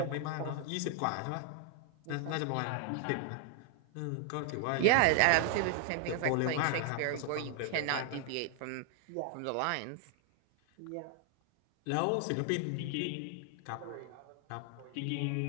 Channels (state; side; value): different; both; correlation 0.00